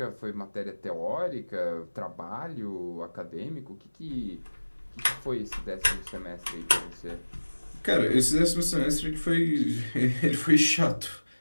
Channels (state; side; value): inverted; both; correlation -1.00